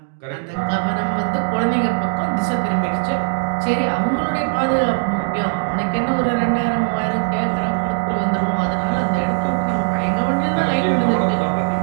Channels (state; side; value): silent; left; digital silence